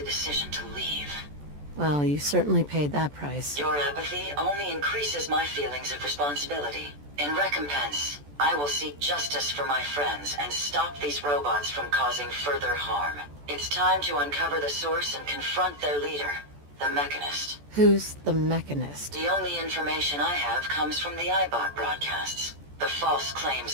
to leave. Well, you certainly paid that price. Your apathy only increases my feelings of responsibility. In recompense, I will seek justice for my friends and stop these robots from causing further harm. It's time to uncover the source and confront their leader, the Mechanist. Who's the Mechanist? The only information I have comes from the iBot broadcasts. The false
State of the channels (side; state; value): left; late; 14 ms